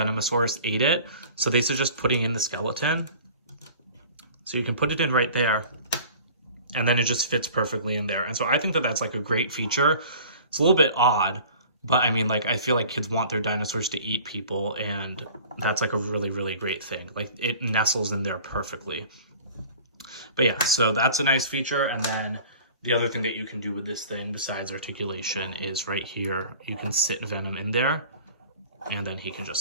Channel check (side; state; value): both; inverted; correlation -0.44